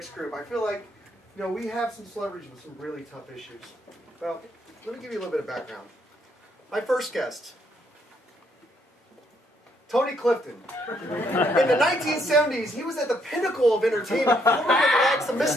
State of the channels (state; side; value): normal; both; correlation 0.72